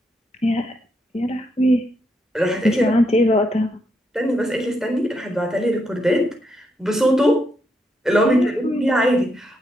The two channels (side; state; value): both; normal; correlation 0.79